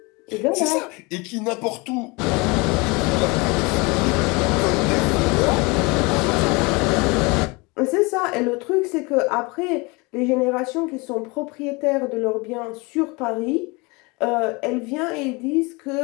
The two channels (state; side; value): quieter; right; 26.7 dB